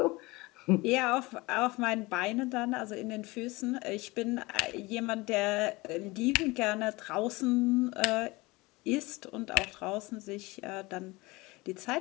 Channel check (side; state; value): right; quieter; 22.7 dB